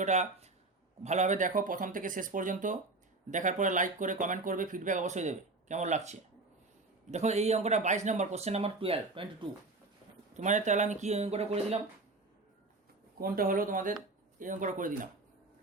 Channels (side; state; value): left; quieter; 3.3 dB